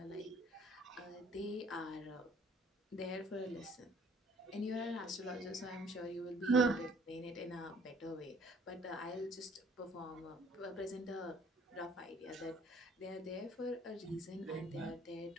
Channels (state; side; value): normal; both; correlation 0.57